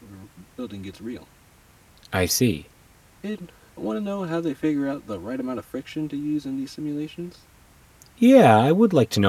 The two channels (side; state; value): both; identical; correlation 1.00